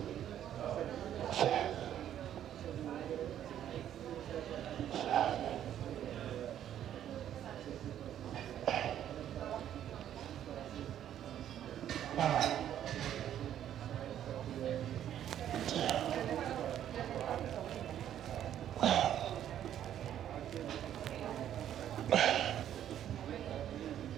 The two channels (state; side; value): quieter; left; 10.7 dB